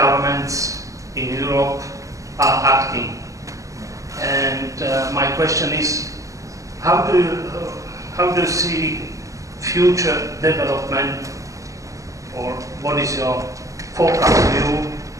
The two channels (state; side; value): late; left; 0.16 ms